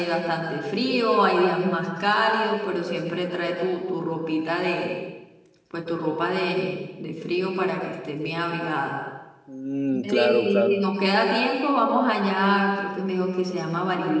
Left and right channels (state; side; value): identical; both; correlation 1.00